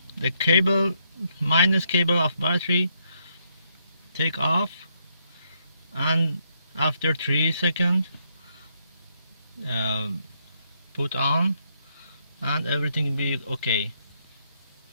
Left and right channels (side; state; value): both; inverted; correlation -0.76